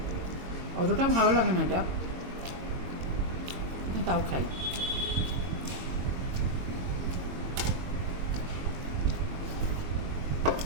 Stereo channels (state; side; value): late; left; 22 ms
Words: অতটা ভালো লাগে না এটা, কিন্তু তাও খাই।